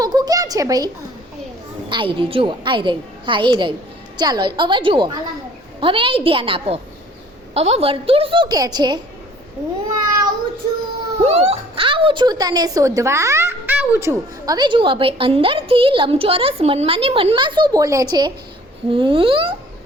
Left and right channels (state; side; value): normal; both; correlation 0.54